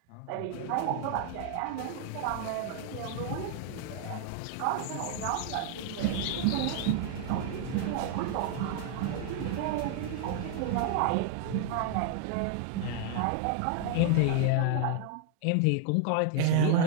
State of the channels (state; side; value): different; both; correlation 0.00